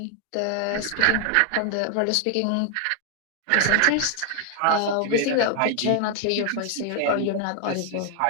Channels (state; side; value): different; both; correlation 0.00